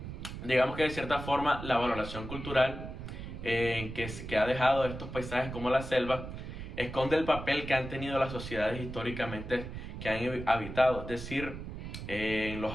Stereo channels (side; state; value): right; noise; rumble, 9 dB below the sound